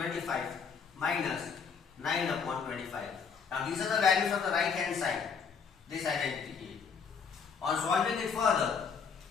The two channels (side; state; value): right; quieter; 6.0 dB